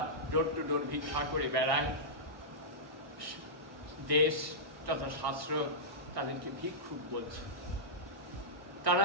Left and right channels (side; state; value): left; late; 1.1 ms